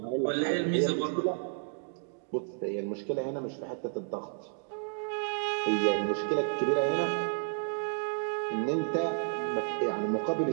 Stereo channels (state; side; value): silent; left; digital silence